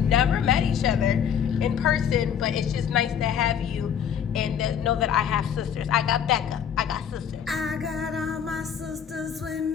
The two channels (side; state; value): right; quieter; 8.4 dB